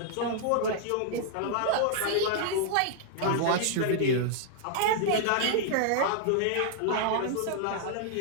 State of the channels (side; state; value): both; different; correlation -0.01